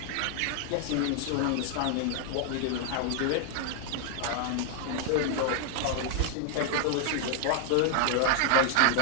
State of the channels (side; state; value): both; different; correlation 0.00